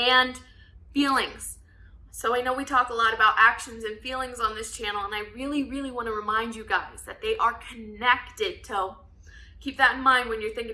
feelings. So I know we talk a lot about actions and feelings on this channel, and I really, really want to remind you guys that they are connected. So keep that in mind when you're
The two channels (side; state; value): both; identical; correlation 1.00